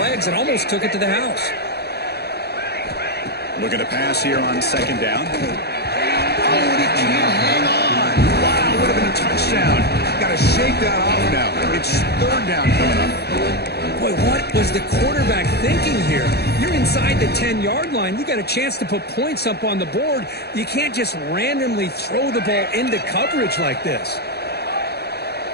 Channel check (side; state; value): right; late; 0.48 ms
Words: and almost took it to the house. Looking to pass here on second down. Oh, and he can't hang on. Wow, would have been a touchdown. Got to shake that off now. It's third down coming up. Boy, what was the quarterback thinking here? You're inside the 10-yard line. You got a chance to put points up on the board. You can't just randomly throw the ball into coverage like this.